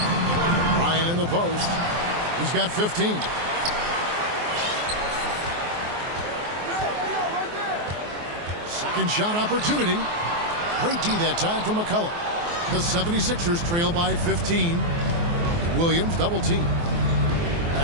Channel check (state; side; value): late; left; 24 ms